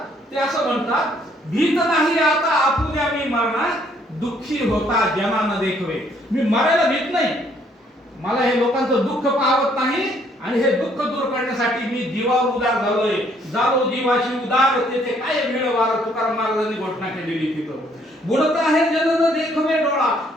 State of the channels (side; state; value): both; normal; correlation 0.66